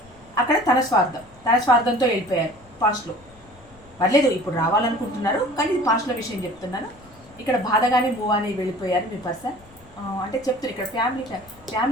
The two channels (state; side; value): noise; left; rumble, 26 dB below the sound